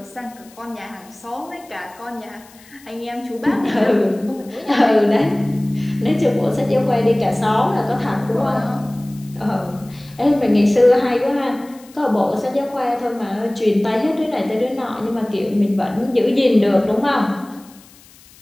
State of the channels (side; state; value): left; noise; hiss, 25 dB below the sound